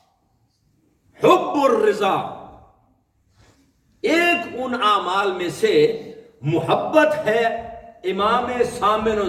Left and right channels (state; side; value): identical; both; correlation 1.00